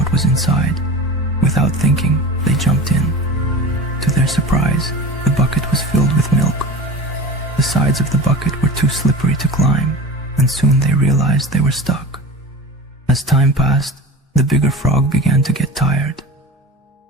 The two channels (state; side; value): normal; both; correlation 0.33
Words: was inside. Without thinking, they jumped in. To their surprise, the bucket was filled with milk. The sides of the bucket were too slippery to climb, and soon they realized they were stuck. As time passed, the bigger frog began to get tired.